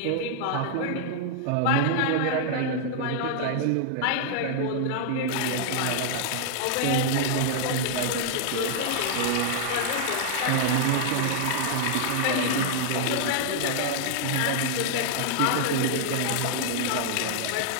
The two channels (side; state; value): both; different; correlation -0.01